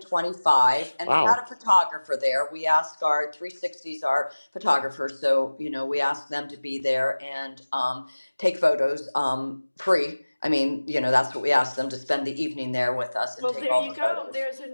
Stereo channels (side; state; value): both; inverted; correlation -1.00